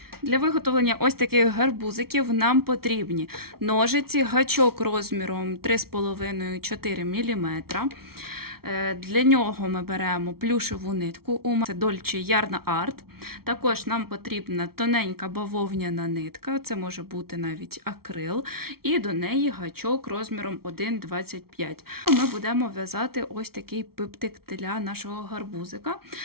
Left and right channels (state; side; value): late; left; 0.94 ms